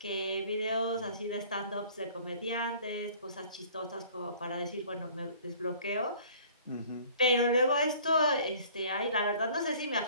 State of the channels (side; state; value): both; inverted; correlation -0.51